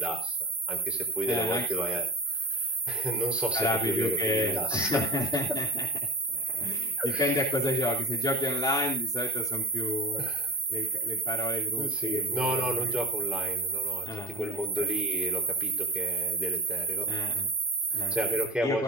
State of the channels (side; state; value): both; normal; correlation 0.27